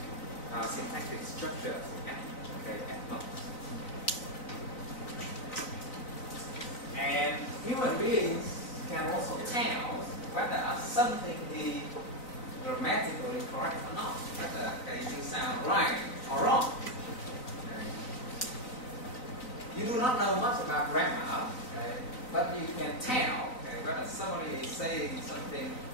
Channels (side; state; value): right; late; 3.9 ms